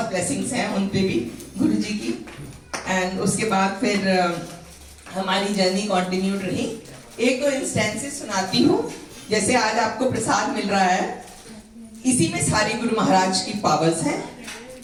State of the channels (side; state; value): both; identical; correlation 1.00